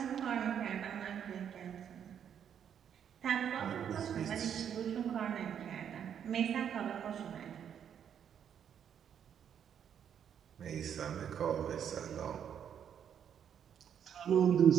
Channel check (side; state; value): left; quieter; 8.6 dB